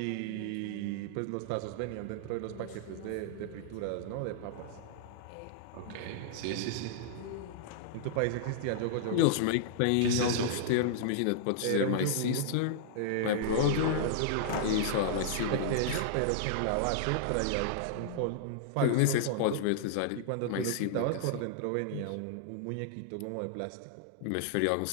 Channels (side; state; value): both; different; correlation -0.01